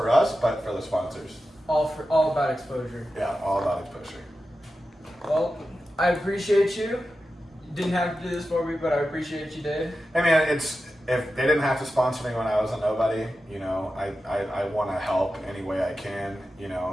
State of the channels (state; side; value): normal; both; correlation 0.92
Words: us, but for the sponsors. All about exposure. Yeah, all about exposure. Well, I appreciate you. You didn't have to do this for me, but I appreciate you did. I mean, if they didn't have to sponsor me when I was a nobody, you know, I want to help any way I can, you